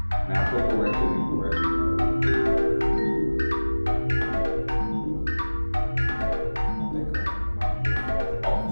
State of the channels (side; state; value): both; inverted; correlation -1.00